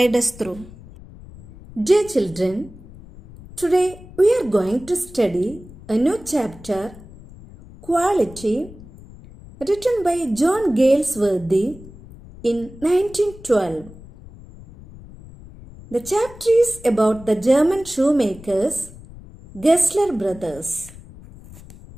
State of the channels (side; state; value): left; noise; rumble, 19 dB below the sound